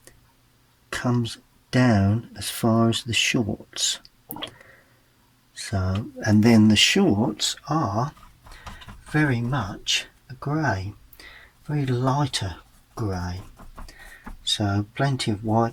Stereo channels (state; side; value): identical; both; correlation 1.00